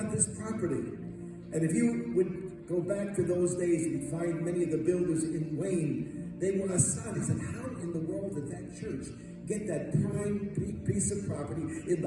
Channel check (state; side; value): identical; both; correlation 1.00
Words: this property. And if you would go back to those days and find many of the builders in Wayne, they were astonished. They said, how in the world did that church get that prime piece of property in